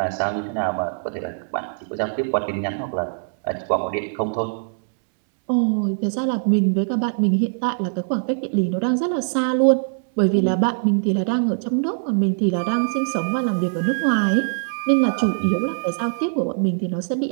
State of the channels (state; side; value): silent; left; digital silence